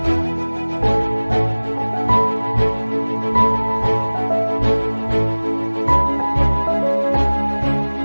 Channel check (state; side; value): inverted; both; correlation -1.00